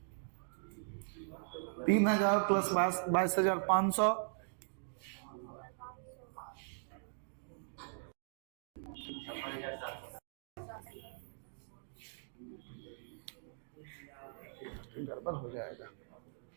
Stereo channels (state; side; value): silent; left; digital silence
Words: 3000 प्लस 22,500, गड़बड़ हो जाएगा।